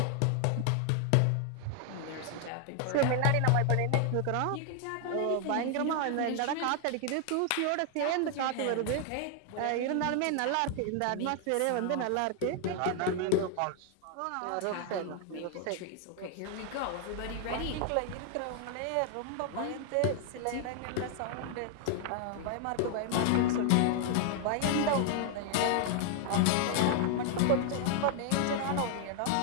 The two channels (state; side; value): different; both; correlation 0.00